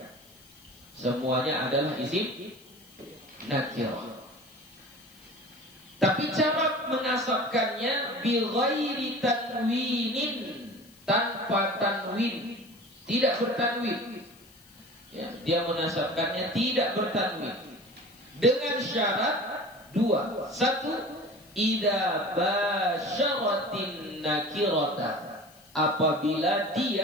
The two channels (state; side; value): noise; left; hiss, 26 dB below the sound